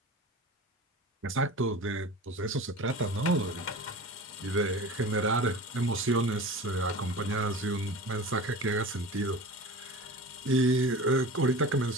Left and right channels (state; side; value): normal; both; correlation 0.35